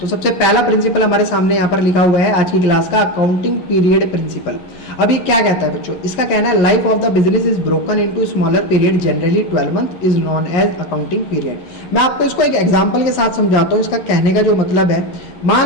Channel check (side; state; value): right; late; 11 ms